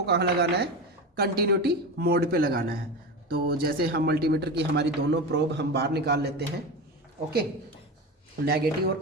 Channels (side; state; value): both; normal; correlation 0.23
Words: कहाँ लगाना है? कंटिन्यूटी मोड पे लगाना है। तो जैसे हम मल्टीमीटर की हमारी दोनों प्रोब हम बाहर निकाल लेते हैं। ओके, नेगेटिव और